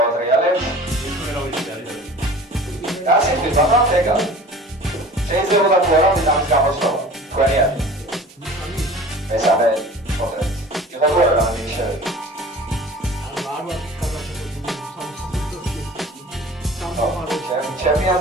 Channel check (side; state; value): both; normal; correlation 0.42